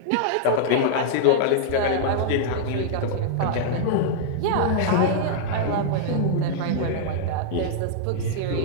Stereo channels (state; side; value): different; both; correlation -0.01